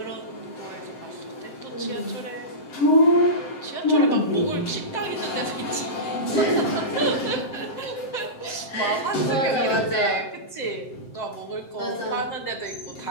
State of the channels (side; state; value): right; late; 7.7 ms